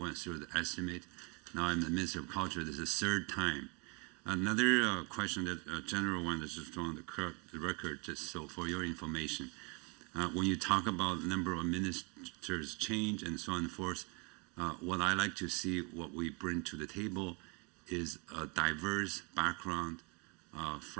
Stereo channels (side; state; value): left; quieter; 32.0 dB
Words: through the estimate. Now I'm the Minister of Culture. This is the third time. Another question that general one is just on the record, just so for your information. When you talk about the number of ministers change and so on and forth, what I like to see, what we bring to the table is a diverse background